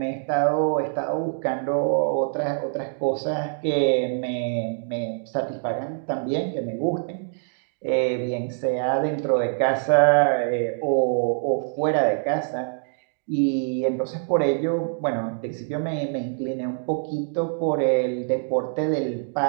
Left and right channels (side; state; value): left; silent; digital silence